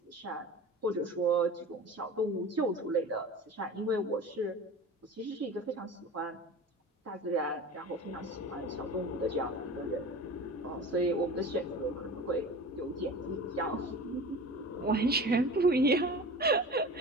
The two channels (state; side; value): normal; both; correlation 0.35